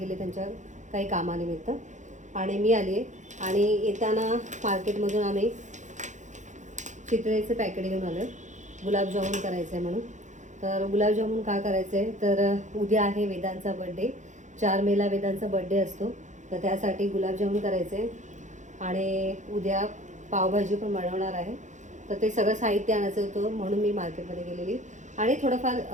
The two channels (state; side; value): late; left; 0.35 ms